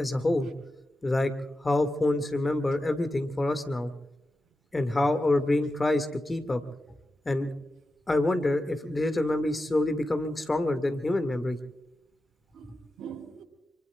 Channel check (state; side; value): normal; both; correlation 0.91